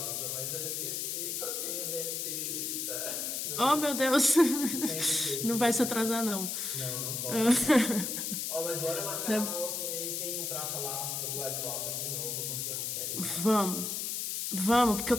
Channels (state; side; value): noise; left; hiss, 2 dB below the sound